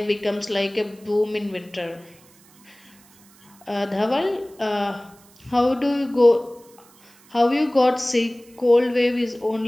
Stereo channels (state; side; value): noise; right; hiss, 28 dB below the sound